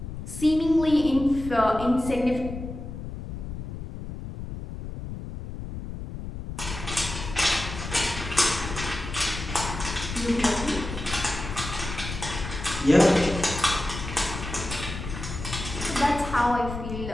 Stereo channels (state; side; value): noise; left; rumble, 8 dB below the sound